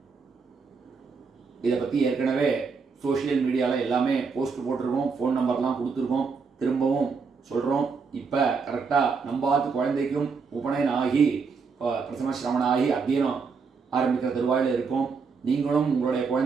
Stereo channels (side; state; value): left; quieter; 5.1 dB